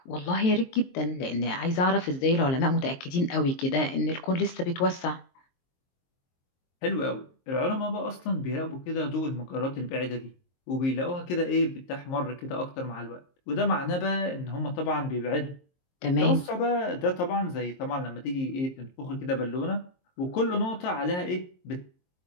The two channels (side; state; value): right; late; 23 ms